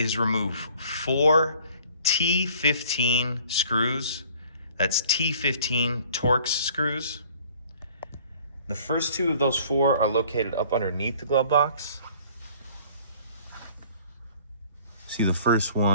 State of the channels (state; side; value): inverted; both; correlation -0.53